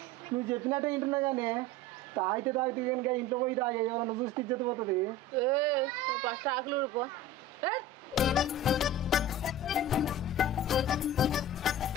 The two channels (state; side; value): normal; both; correlation 0.34